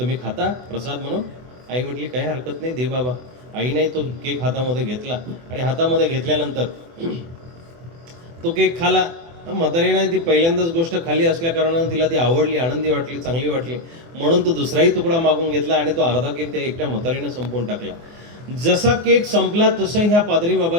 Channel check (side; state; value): left; late; 24 ms